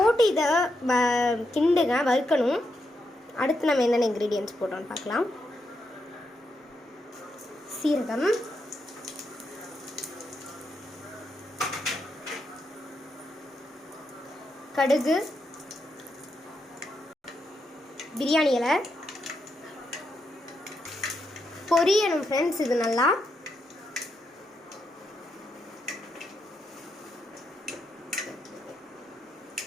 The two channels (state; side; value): normal; both; correlation 0.82